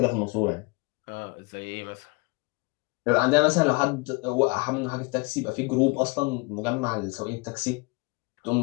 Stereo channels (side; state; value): right; quieter; 28.0 dB